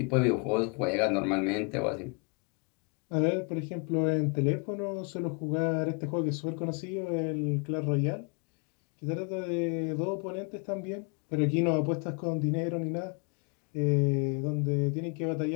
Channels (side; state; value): right; quieter; 34.0 dB